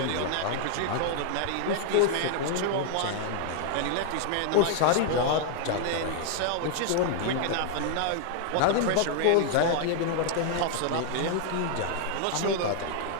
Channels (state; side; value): different; both; correlation 0.00